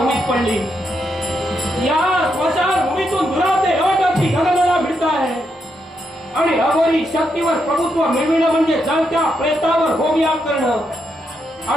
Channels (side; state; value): both; normal; correlation 0.81